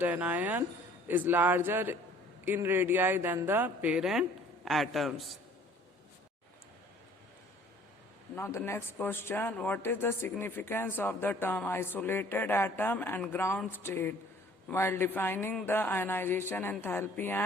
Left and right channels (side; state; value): both; normal; correlation 0.54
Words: anion is larger in radii than the parent atoms. Now the next question, what is the significance of the term isolated atom and ground state while defining the ionization enthalpy